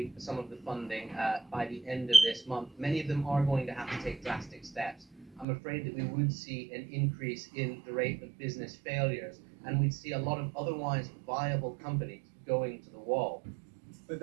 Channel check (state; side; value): drops out; left; at 5.5 s